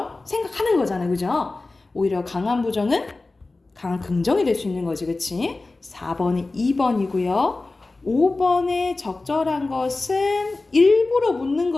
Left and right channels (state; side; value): quieter; right; 3.3 dB